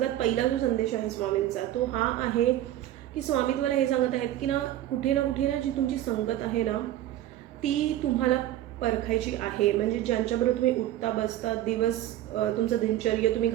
पहिला जो संदेश आहे स्वामींचा तो हा आहे की स्वामी तुम्हाला हे सांगत आहेत की कुठे ना जी तुमची संगत आहे ना ती तुम्हाला परखायची आहे. म्हणजे ज्यांच्याबरोबर तुम्ही उठता बसता दिवस तुमचं दिनचर्या तुम्ही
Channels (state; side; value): quieter; left; 13.3 dB